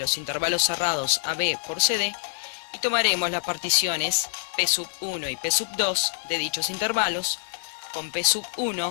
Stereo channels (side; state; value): right; silent; digital silence